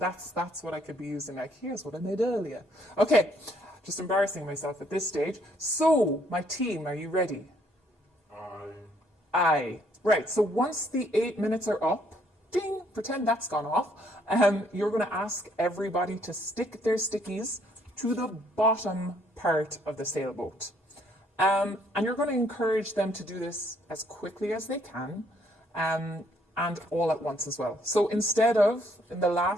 what I could be using, like, here's what I made earlier. Okay, just embarrassing myself at this stage. So, my team, are you ready? Aye. Right, so once the 8 minutes are up, ding, pretend that's gone off, you're going to ask everybody to stick their stickies to the bottom part of the sailboat. And you're going to encourage them to do this as quickly as they can, and all at once as well. So instead of, in the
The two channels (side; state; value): both; normal; correlation 0.67